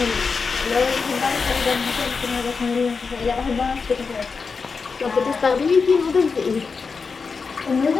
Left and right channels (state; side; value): quieter; right; 5.0 dB